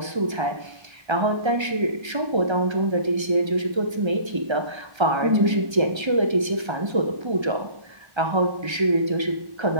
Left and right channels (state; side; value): late; left; 1.3 ms